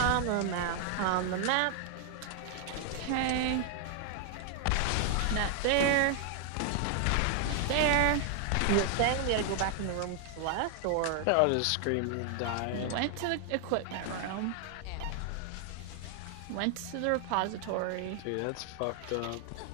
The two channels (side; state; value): both; different; correlation 0.00